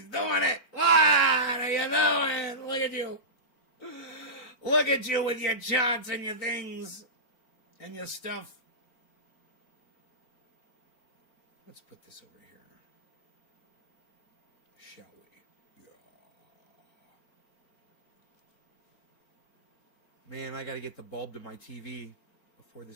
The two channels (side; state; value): right; late; 4.4 ms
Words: doing it. What are you doing? Look at you. Look at you with your charts and your things and your stuff. Let's put this over here. Shall we? Yeah. Man, I got to get the bulb to my TV before